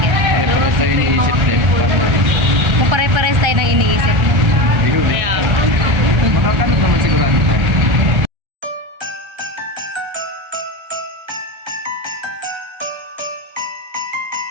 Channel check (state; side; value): late; left; 1.3 ms